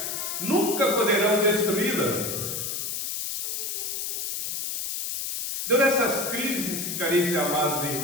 nunca poderão destruí-la. Então, nessas crises, caríssimos e amados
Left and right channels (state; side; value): noise; left; hiss, 3 dB below the sound